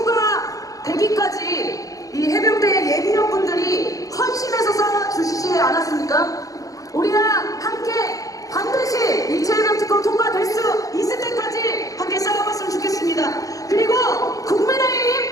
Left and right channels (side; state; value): right; late; 0.17 ms